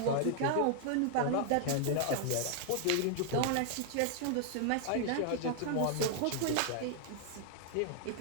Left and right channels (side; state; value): both; different; correlation 0.00